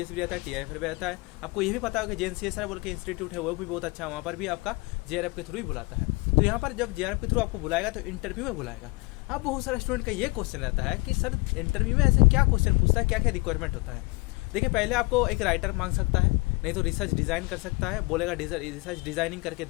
भी रहता है, टीआईएफआर भी रहता है। आपको ये भी पता होगा कि JNCSR बोल के इंस्टीट्यूट है, वो भी बहुत अच्छा है, वहाँ पर भी आपका जेआरएफ के थ्रू ही बुलाता है। तो यहाँ पर जब जेआरएफ के थ्रू आपको बुलाएगा तो इंटरव्यू में बुलाएगा। अब बहुत सारे स्टूडेंट का ये क्वेश्चन रहता है कि सर इंटरव्यू में ऐसे क्या क्वेश्चन पूछता है, क्या क्या रिक्वायरमेंट होता है। देखिए, पहले आपको एक राइटर मांग सकता है, नहीं तो रिसर्च डिज़ाइन कर सकता है, बोलेगा रिसर्च डिज़ाइनिंग करके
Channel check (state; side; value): quieter; right; 26.3 dB